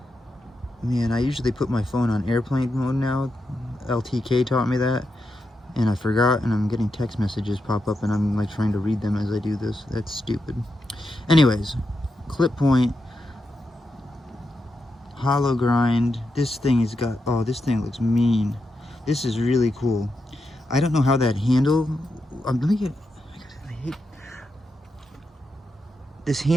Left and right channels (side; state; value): both; normal; correlation 0.86